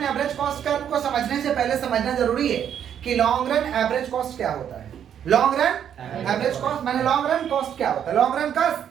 average cost curve को समझने से पहले समझना जरूरी है कि लॉन्ग रन एवरेज कॉस्ट क्या होता है। लॉन्ग रन एवरेज कॉस्ट माने लॉन्ग रन कॉस्ट क्या होता है? लॉन्ग रन कॉस्ट,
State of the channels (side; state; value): left; quieter; 9.1 dB